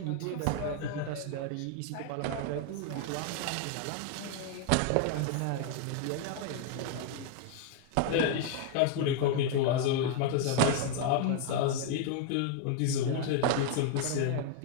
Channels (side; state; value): both; different; correlation 0.00